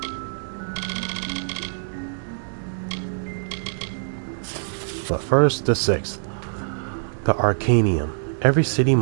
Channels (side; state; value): left; silent; digital silence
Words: But first, the 6th. The Arcanium. Every city